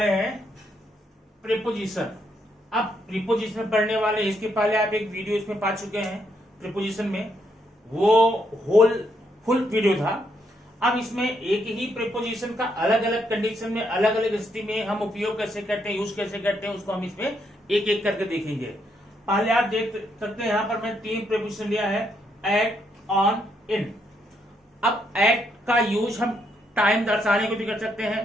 हैं प्रीपोजिशन। अब प्रीपोजिशन पढ़ने वाले, इसके पहले आप एक वीडियो इसमें पा चुके हैं प्रीपोजिशन में, वो फुल वीडियो था। अब इसमें एक ही प्रीपोजिशन का अलग अलग कंडीशन में, अलग अलग स्थिति में हम उपयोग कैसे करते हैं, यूज कैसे करते हैं, उसको हम इसमें एक एक करके देखेंगे। पहले आप देख सकते हैं, यहाँ पर मैं 3 प्रीपोजिशन लिया है, एट, ऑन, इन। अब एट का यूज हम टाइम दर्शाने को भी कर सकते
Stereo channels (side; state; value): both; normal; correlation 0.76